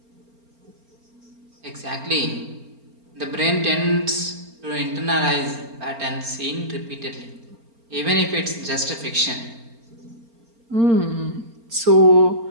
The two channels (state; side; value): late; left; 4.3 ms